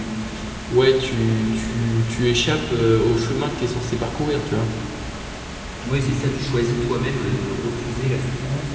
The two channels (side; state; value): both; identical; correlation 1.00